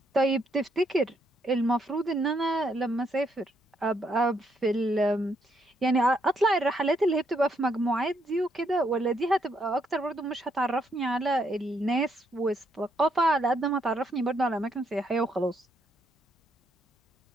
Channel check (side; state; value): both; normal; correlation 0.74